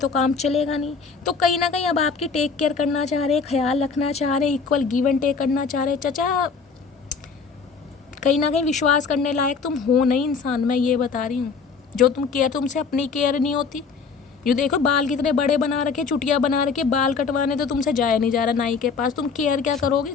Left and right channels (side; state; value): right; quieter; 5.2 dB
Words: काम चलेगा नहीं। तो कहीं ना कहीं अब आपकी टेक केयर करना चाह रहे हैं, ख्याल रखना चाह रहे हैं, इक्वल गिव एंड टेक करना चाह रहे हैं। चचा कहीं ना कहीं विश्वास करने लायक तुम हो नहीं इंसान, मैं ये बता रही हूँ। जो तुम केयर, तुमसे अपनी केयर नहीं होती। ये देखो बाल कितने बड़े बना रखे, चुटिया बना रखे, बाल कटवाने तो तुमसे जाया नहीं जा रहा नाई के पास, तुम केयर क्या करोगे,